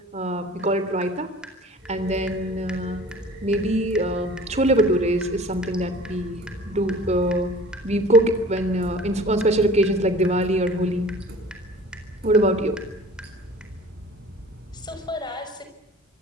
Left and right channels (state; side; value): normal; both; correlation 0.44